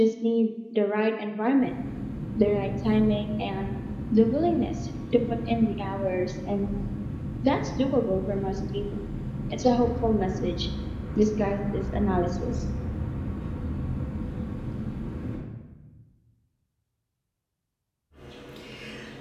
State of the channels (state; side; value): identical; both; correlation 1.00